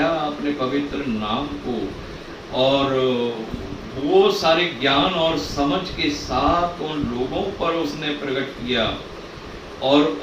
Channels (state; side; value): identical; both; correlation 1.00